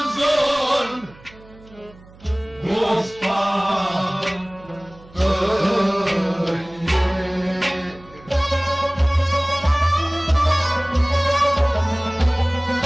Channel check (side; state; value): right; noise; hum, 24 dB below the sound